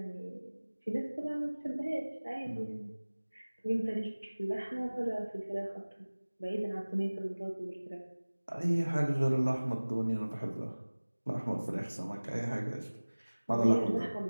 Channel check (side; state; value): both; inverted; correlation -1.00